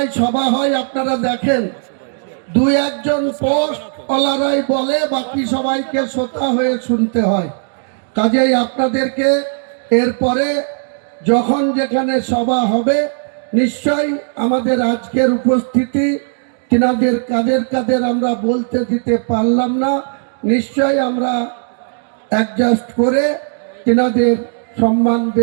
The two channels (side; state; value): left; silent; digital silence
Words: সভা হয়, আপনারা দেখেন 2-1জন পোস্টওয়ালারাই বলে, বাকি সবাইকে শ্রোতা হয়ে শুনতে হয়। কাজেই আপনাদেরকে এরপরে যখন যেখানে সভা হবে নিশ্চয়ই আমাদের আজকের উপস্থিতি তিনাদের কাদের আমরা বলতে দিতে পারলাম না, নিশ্চয়ই আমরা অ্যাডজাস্ট করে তিনাদের সম্মান